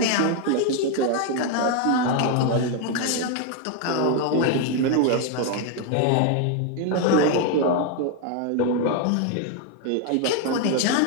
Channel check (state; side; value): different; both; correlation 0.01